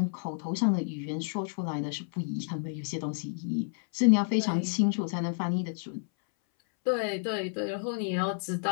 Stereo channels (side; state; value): right; silent; 58 dB below the other